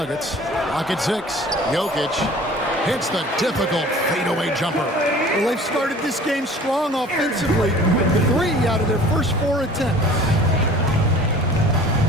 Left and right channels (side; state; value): both; normal; correlation 0.47